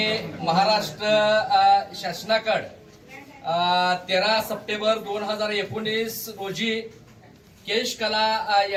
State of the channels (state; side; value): identical; both; correlation 1.00